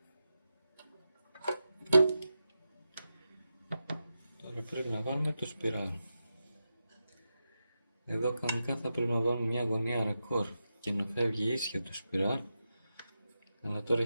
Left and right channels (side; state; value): both; inverted; correlation -0.89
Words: Τώρα πρέπει να βάλουμε το σπιράλ. Εδώ κανονικά θα πρέπει να βάλουμε μια γωνία ρακόρ και να φεύγει ίσια το σπιράλ. Αλλά τώρα